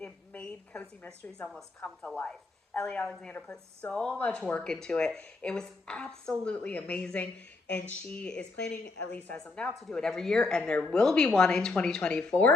made cozy mysteries almost come to life. Ellie Alexander put so much work into it. It was absolutely amazing, and she is planning, at least as of now, to do it every year, and there will be one in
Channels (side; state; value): right; quieter; 3.5 dB